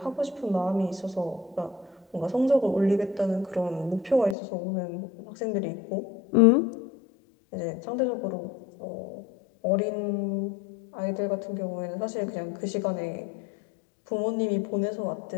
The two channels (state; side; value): drops out; right; at 4.4 s